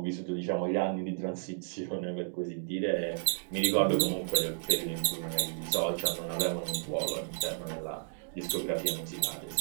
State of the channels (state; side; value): silent; left; digital silence